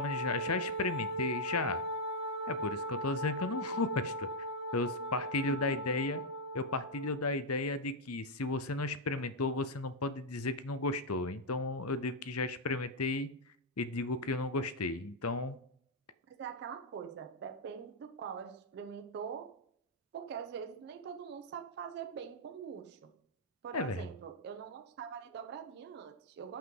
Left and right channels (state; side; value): normal; both; correlation -0.03